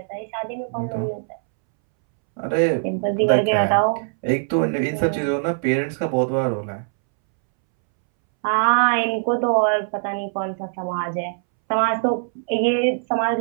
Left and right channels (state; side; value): silent; left; 64 dB below the other